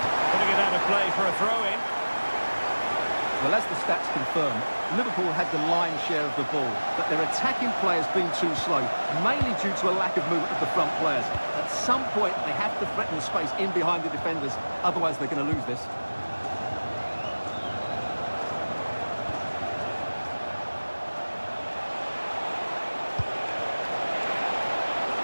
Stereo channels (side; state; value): both; inverted; correlation -1.00